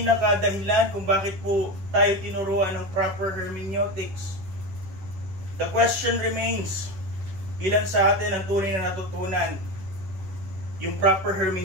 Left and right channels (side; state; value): left; late; 11 ms